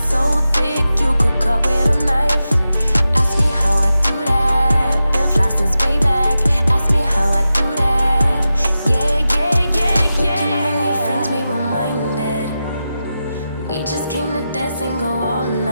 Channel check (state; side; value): inverted; both; correlation -0.91